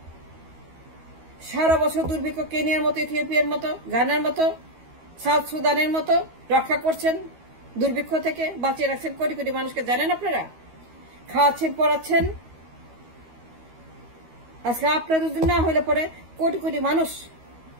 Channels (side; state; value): left; late; 13 ms